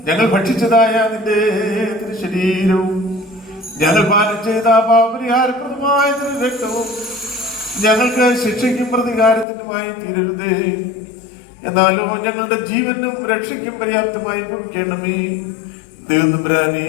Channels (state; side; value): drops out; right; at 9.5 s